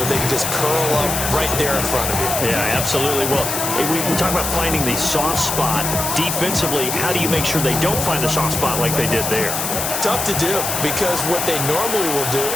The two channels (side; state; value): left; noise; hiss, 2 dB below the sound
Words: they can just curl up right there in front of you. Yeah, absolutely. Well, we talk about finding the soft spot. Defensively, how do you make sure they don't find the soft spot like they did there? Tough to do, because what they normally will do